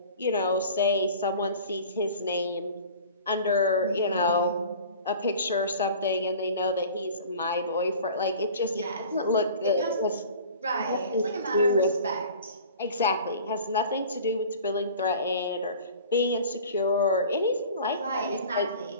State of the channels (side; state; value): both; inverted; correlation -0.43